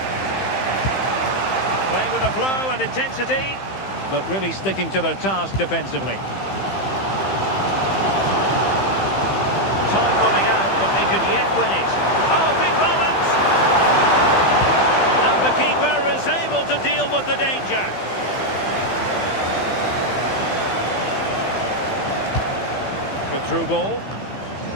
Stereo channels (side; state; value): right; late; 15 ms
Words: Playing with a flow and intensity, but really sticking to their task defensively. Time running out, but they could yet win it. Oh, big moment! And the keeper is able to deal with the danger. Good through ball.